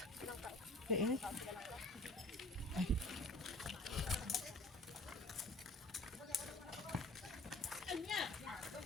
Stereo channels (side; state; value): both; normal; correlation 0.48